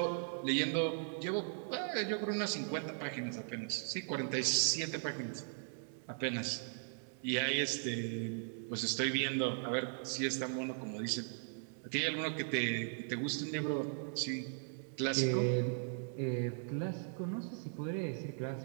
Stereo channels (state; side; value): silent; left; digital silence